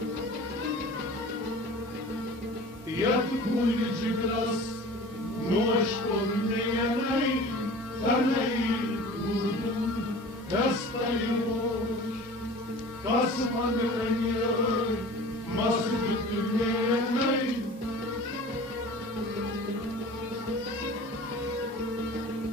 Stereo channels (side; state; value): both; normal; correlation 0.41